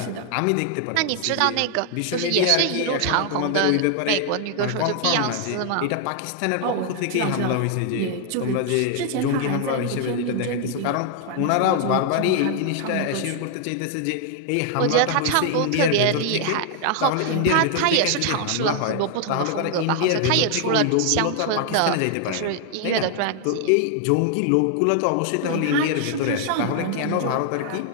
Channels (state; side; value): different; both; correlation 0.00